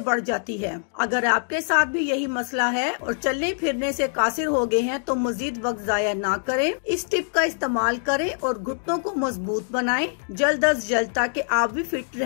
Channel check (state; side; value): silent; right; digital silence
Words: जाती है। अगर आपके साथ भी यही मसला है और चलने फिरने से कासिर हो गए हैं तो मजीद वक्त जाया ना करें। इस टिप का इस्तेमाल करें और घुटनों को मजबूत बनाएं जल्द अज जल्द, ताकि आप भी फिट